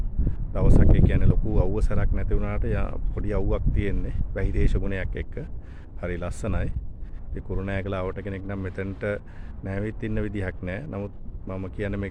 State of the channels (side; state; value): both; identical; correlation 1.00